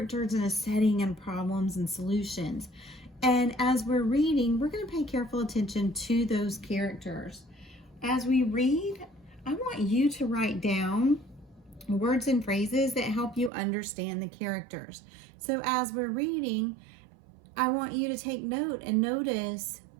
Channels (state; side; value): drops out; left; at 13.5 s